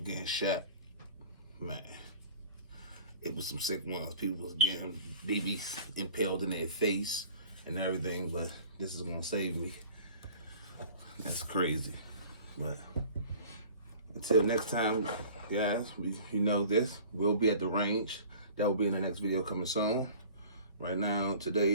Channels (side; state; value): both; inverted; correlation -0.46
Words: shot. Man, it was some sick ones. People was getting BBs impaled in their face and everything, but this is gonna save me. That's crazy. But until next time, guys, you know this. We'll be at the range. That will be in the next video coming soon. Right now,